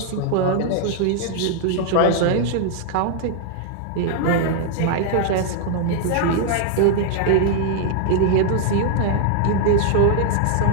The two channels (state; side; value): different; both; correlation 0.00